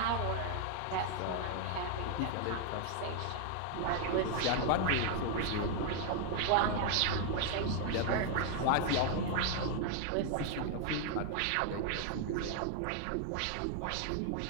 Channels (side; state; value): both; different; correlation 0.00